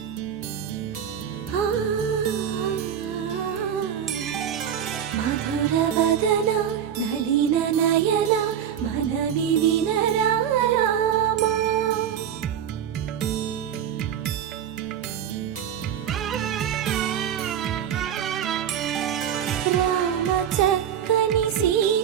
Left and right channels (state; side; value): quieter; left; 9.1 dB